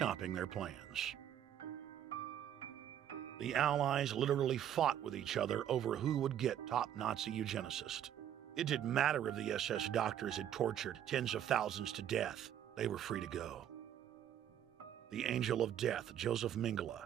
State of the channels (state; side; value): quieter; left; 10.4 dB